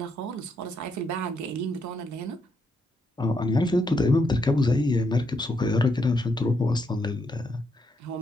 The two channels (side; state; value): both; normal; correlation 0.78